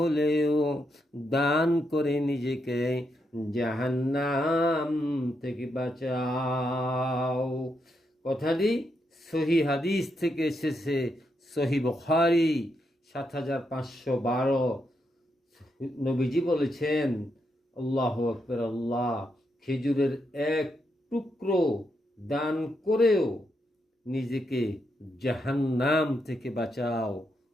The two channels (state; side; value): normal; both; correlation 0.81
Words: দান করে নিজেকে জাহান্নাম থেকে বাঁচাও। কথাটি সহি হাদিস থেকে এসেছে, সহি বুখারী ৭৫১২। নবীজি বলেছেন, আল্লাহু আকবার, আল্লাহ, খেজুরের এক টুকরো দান করেও নিজেকে জাহান্নাম থেকে বাঁচাও।